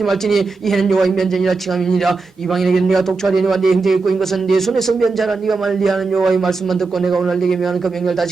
말지니 이해는 여호와의 면제니라. 칭함이니라. 이방인에게는 네가 독초하려니와 네 형제에게 꾸인 것은 네 손에서 면제하라. 네가 만일 네 하는 여호와의 말씀만 듣고 내가 오늘 네게 명하는 그 명령을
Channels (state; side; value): quieter; left; 4.1 dB